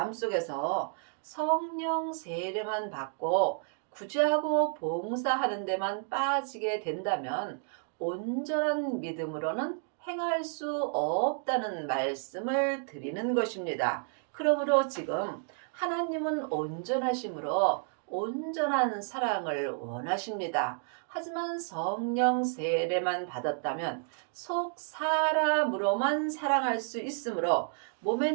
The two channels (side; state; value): left; silent; 56 dB below the other